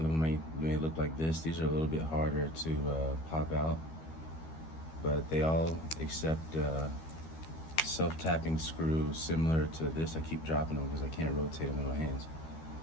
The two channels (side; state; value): right; late; 13 ms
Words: them may look like this. These are a little bit harder to pop out, but they all accept self-tapping screw similar to this. I keep dropping them because I can't rotate them in my hands.